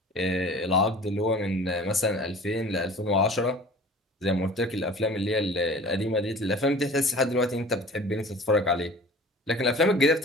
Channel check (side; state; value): both; normal; correlation 0.44